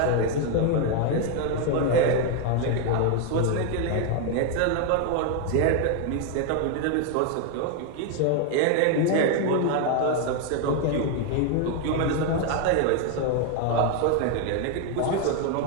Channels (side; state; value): both; different; correlation 0.01